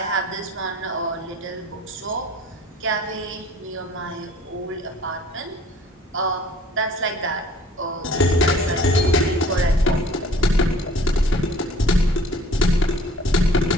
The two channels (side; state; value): both; normal; correlation 0.52